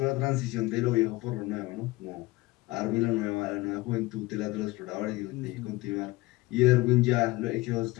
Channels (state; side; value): quieter; right; 20.7 dB